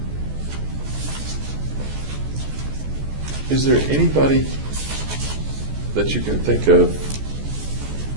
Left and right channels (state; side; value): late; left; 14 ms